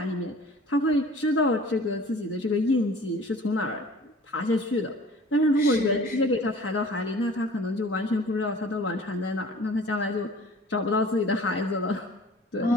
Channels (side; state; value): both; normal; correlation 0.46